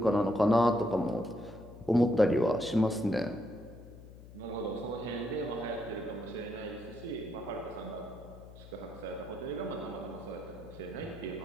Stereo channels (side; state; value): left; noise; hum, 17 dB below the sound